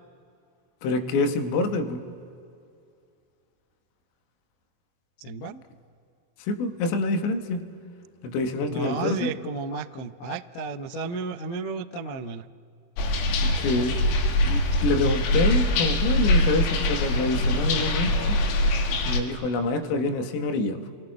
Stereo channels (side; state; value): right; late; 24 ms